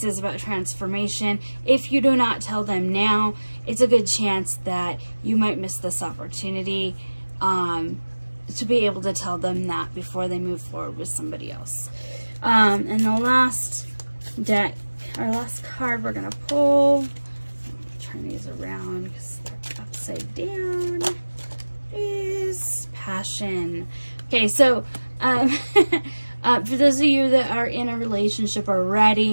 is about transformation. If you do not tell them now, it's a good chance that you might miss this opportunity to be able to tell them that before they move forward with somebody else. And the last deck, our last card we're going to pull, turn these around because they're upside down, is Passion. Okay, so for those of you that are in a relationship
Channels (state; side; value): inverted; both; correlation -1.00